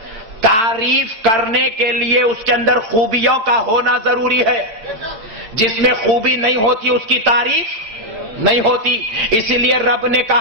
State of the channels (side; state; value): left; late; 8.9 ms